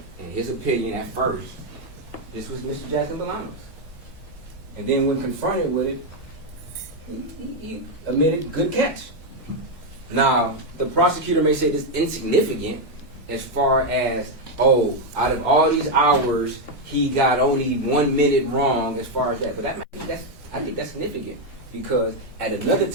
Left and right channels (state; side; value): normal; both; correlation 0.03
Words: in his opinion at first, this was Mr. Jackson-Bolanos. And then when confronted with it, he admitted good catch. Now, the prosecutor may say this is insignificant as far as, oh, out of all these hours, he got only 1 minute wrong as far as that. But I think that's significant because at another